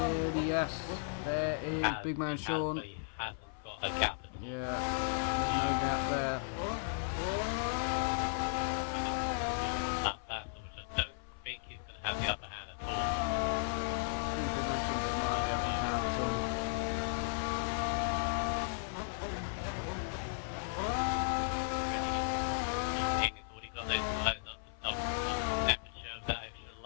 Yes. There is Big Man Sean. He hasn't got a gap at all. Yeah, there's no gap there. That battle, which I don't think he's going to have the upper hand at all. He's already got those lights up to double temperature of that extra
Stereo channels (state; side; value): silent; right; 54 dB below the other